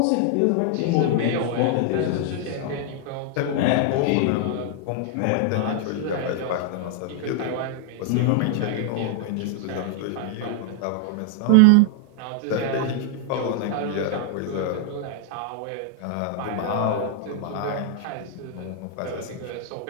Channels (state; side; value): different; both; correlation 0.00